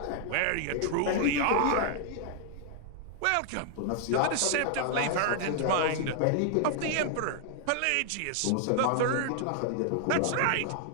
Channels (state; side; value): different; both; correlation 0.00